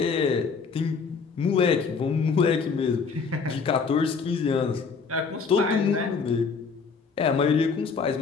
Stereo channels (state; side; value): quieter; right; 5.3 dB